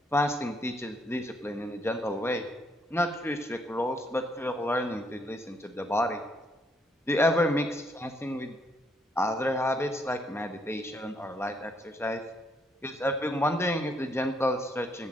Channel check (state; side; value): normal; both; correlation 0.72